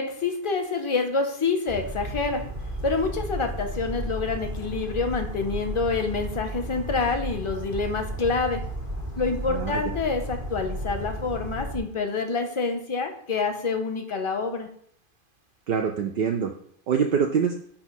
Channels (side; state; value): left; late; 2.5 ms